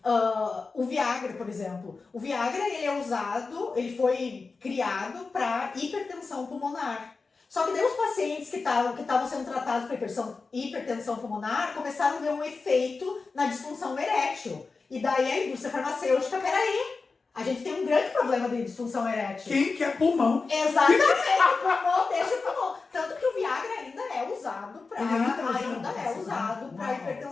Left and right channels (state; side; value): quieter; right; 4.3 dB